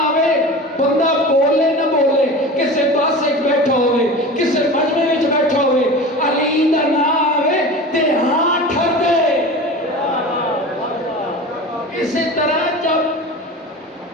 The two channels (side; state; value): both; normal; correlation 0.33